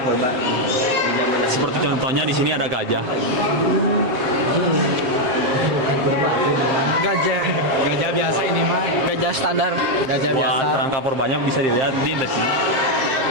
Di zaman Seperti contohnya di sini ada gajah. Gajah. Gajah biasa ini mah, Gajah standar. gajah biasa. Wah, kerangka purbanya bisa dilihat di sini.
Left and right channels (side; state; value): left; late; 7.4 ms